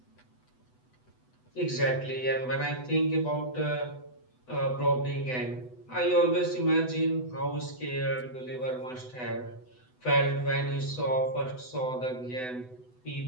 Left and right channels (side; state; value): right; late; 8.0 ms